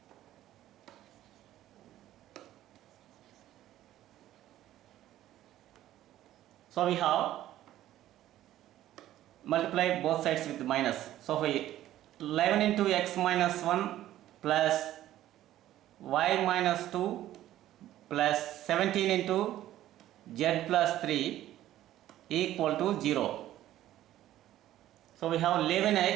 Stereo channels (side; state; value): left; quieter; 13.5 dB